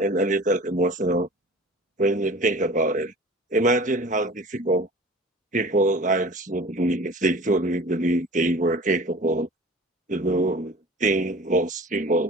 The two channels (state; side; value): normal; both; correlation 0.42